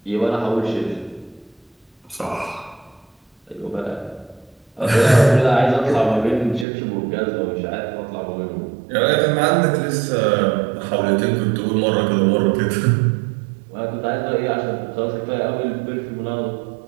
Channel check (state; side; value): drops out; left; at 6.7 s